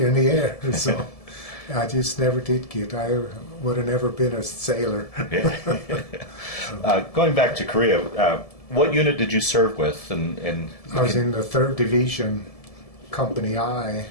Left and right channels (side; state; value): right; late; 1.7 ms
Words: in the air. So I just never did get. I would have never been a sailor. Going back to Korea, what unit did you serve with? And I was in the 3rd Division, Company I.